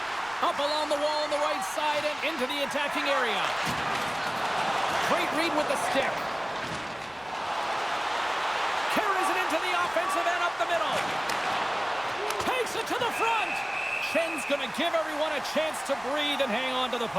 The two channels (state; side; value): noise; right; rumble, 27 dB below the sound